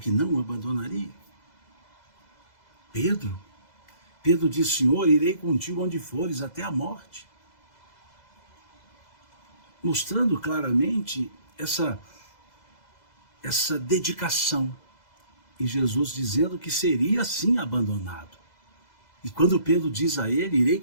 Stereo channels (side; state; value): right; late; 2.0 ms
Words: não o abandonaria. Pedro Pedro diz: Senhor, irei contigo onde fores, até a morte. Mostrando claramente essa dedicação. E Jesus dizendo que seria assim abandonado. E quando Pedro diz a ele: irei